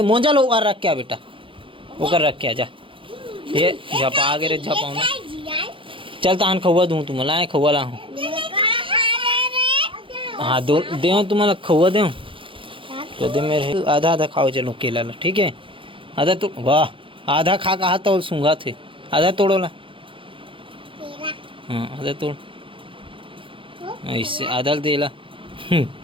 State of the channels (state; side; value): late; left; 0.25 ms